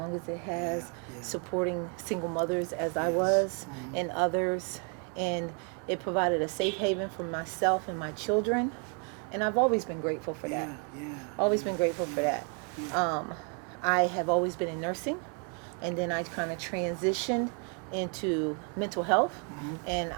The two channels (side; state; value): left; quieter; 37.4 dB